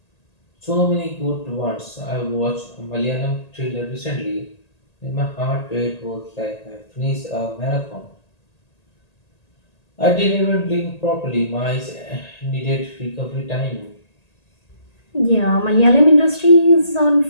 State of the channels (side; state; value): right; late; 1.8 ms